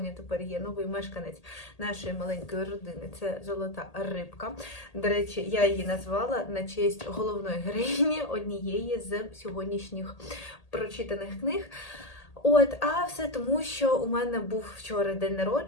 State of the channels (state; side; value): late; right; 1.8 ms